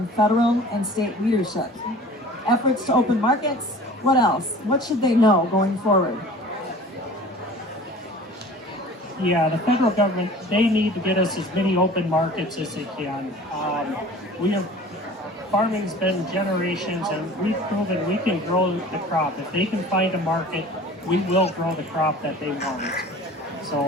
federal and state leadership? Efforts to open markets? What else? What should they know going forward? Yeah, the federal government, they need to get us as many open markets as they can. Farming's been generations, and we've proven we can grow the crop. If they can find a market, we will grow the crop that they want.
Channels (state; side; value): normal; both; correlation 0.44